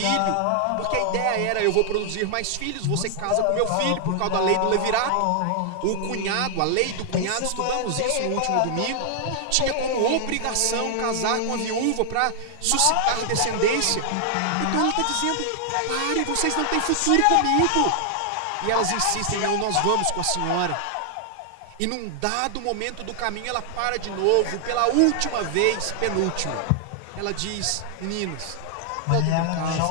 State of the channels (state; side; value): different; both; correlation 0.00